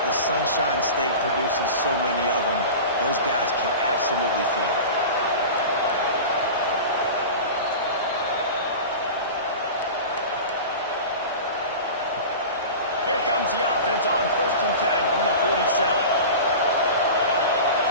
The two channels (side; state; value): both; inverted; correlation -0.32